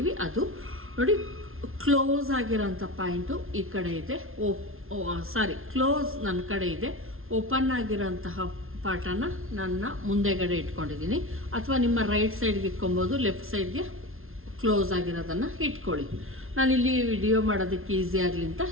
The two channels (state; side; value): late; left; 0.61 ms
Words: ಅದು ನೋಡಿ ಕ್ಲೋಸ್ ಆಗಿರೋಂಥ ಪಾಯಿಂಟು ಈ ಕಡೆ ಇದೆ. ಕ್ಲೋಸ್ ನನ್ನ ಕಡೆ ಇದೆ. ಓಪನ್ ಆಗಿರೋಂತಹ ಪಾರ್ಟನ್ನು ನನ್ನ ಮುಂದೆಗಡೆ ಇಟ್ಕೊಂಡಿದ್ದೀನಿ. ಅಥವಾ ನಿಮ್ಮ ರೈಟ್ ಸೈಡ್ಗೆ ಇಟ್ಕೊಬೋದು, ಲೆಫ್ಟ್ ಸೈಡ್ಗೆ ಕ್ಲೋಸ್ ಆಗಿರೋದನ್ನು ಇಟ್ಕೊಳ್ಳಿ. ನಾನಿಲ್ಲಿ ವಿಡಿಯೋ ಮಾಡೋದಕ್ಕೆ ಈಸಿ ಆಗಲಿ ಅಂತ